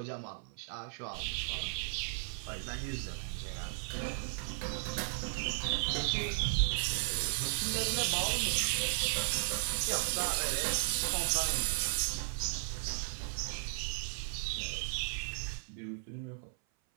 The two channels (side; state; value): left; silent; 54 dB below the other